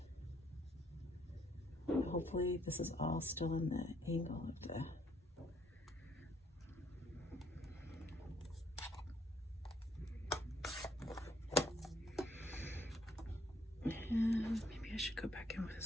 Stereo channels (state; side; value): normal; both; correlation 0.67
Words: Hopefully this is all still in the angle of the and maybe I should go back in with